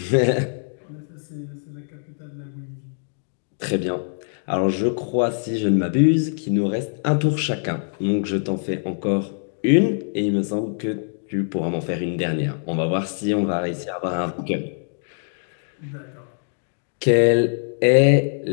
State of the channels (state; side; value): silent; right; digital silence